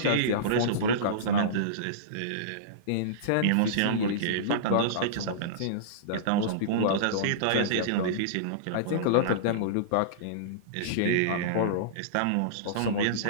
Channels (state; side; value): different; both; correlation -0.04